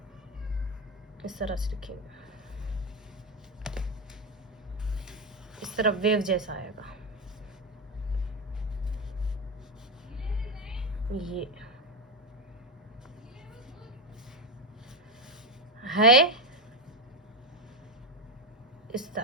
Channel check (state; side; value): normal; both; correlation 0.11